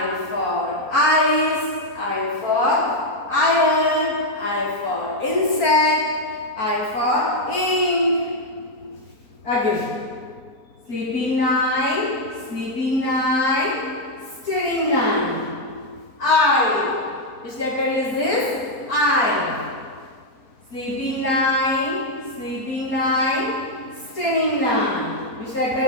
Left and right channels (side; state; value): right; late; 4.4 ms